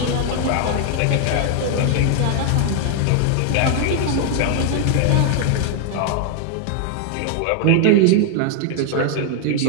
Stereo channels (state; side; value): different; both; correlation 0.00